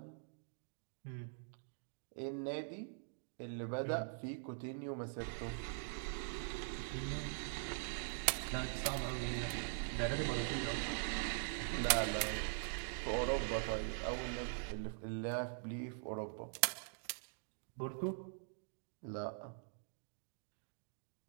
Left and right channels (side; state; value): left; silent; digital silence